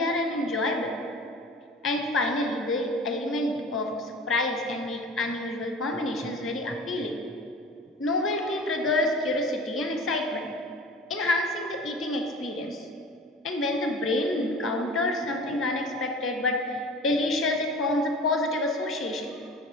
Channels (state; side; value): normal; both; correlation 0.40